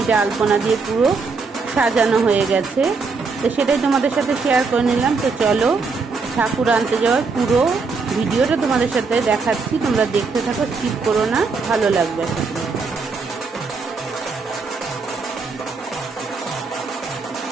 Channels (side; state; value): left; quieter; 4.5 dB